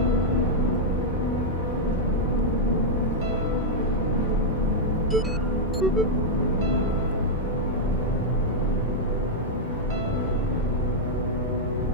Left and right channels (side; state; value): both; normal; correlation -0.04